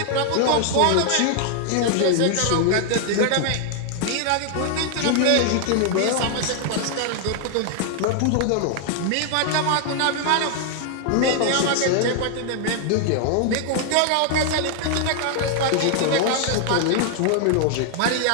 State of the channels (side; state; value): both; different; correlation 0.00